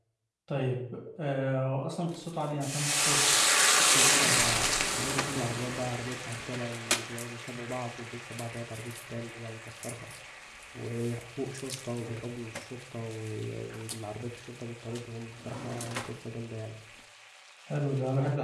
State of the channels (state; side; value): identical; both; correlation 1.00